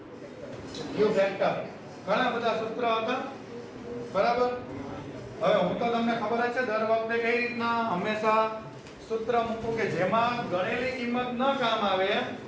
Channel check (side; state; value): both; identical; correlation 1.00